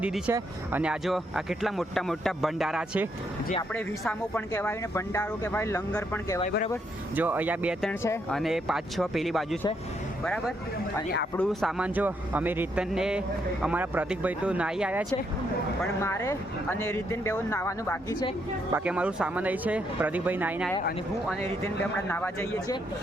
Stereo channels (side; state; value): both; normal; correlation 0.76